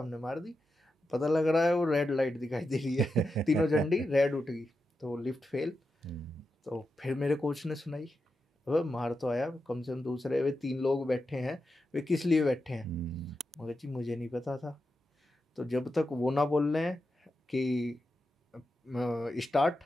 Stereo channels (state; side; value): normal; both; correlation 0.88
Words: मार दी। पता लग रहा है वो रेड लाइट दिखाई दे रही है, तीनों झंडी रेड उठ गई, तो लिफ्ट फेल। तो फिर मेरे कोच ने सुनाई, अब मार तो आया, कम से कम दूसरे वे 3 लोग बैठे हैं, वे किस लिए बैठे हैं। मगर जी मुझे नहीं पता था। तो जब तक वो ना बोल रहे हैं कि स्टार्ट,